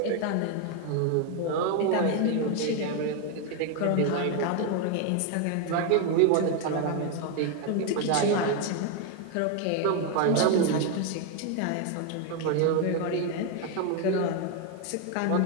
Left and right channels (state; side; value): different; both; correlation 0.01